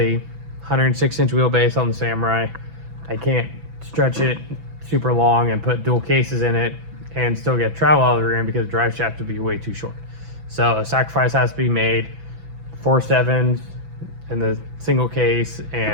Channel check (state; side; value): late; left; 6.0 ms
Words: 106-inch wheelbase on the Samurai. I can't stretch it super long and put dual cases in it and still get travel out of the rear end because the drive shaft would be way too short. So a sacrifice has to be made. 4.7s in the single case